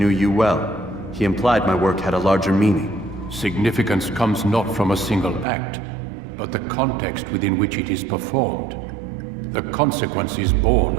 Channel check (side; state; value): left; drops out; at 5.5 s